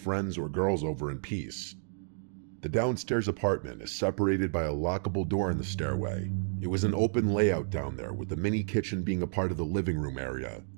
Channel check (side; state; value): left; silent; digital silence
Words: or girls over in peace. The downstairs apartment is separated by a lockable door in the stairway. It was an open layout down there, with the mini kitchen being a part of the living room area.